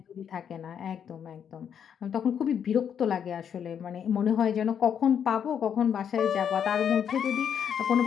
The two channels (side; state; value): right; quieter; 8.2 dB